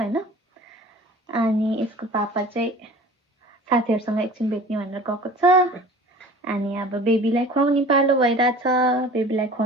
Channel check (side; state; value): both; normal; correlation 0.44